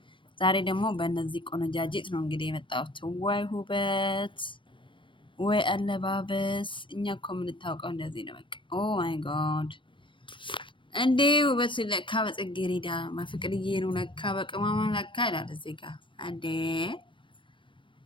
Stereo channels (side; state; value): right; late; 0.24 ms